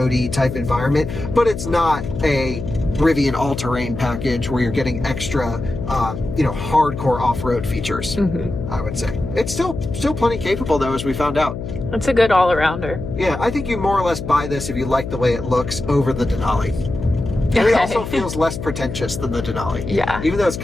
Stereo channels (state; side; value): noise; left; hum, 7 dB below the sound